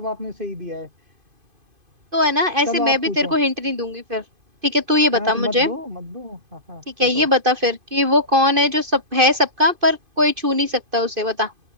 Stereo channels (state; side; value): late; left; 2.5 ms